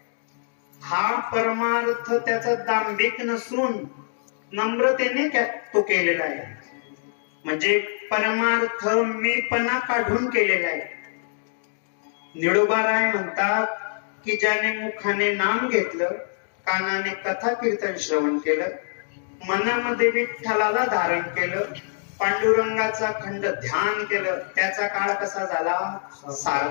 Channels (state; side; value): silent; right; digital silence